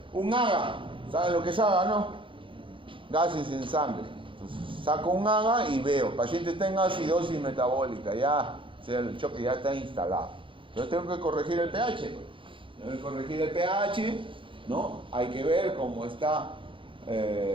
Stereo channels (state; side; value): late; left; 0.25 ms